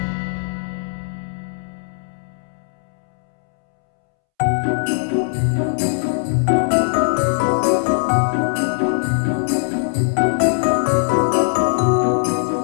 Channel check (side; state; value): right; silent; 66 dB below the other